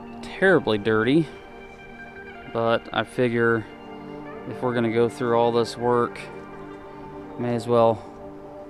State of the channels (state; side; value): identical; both; correlation 1.00